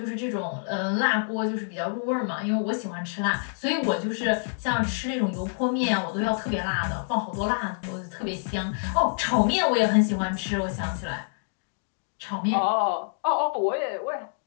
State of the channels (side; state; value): right; silent; digital silence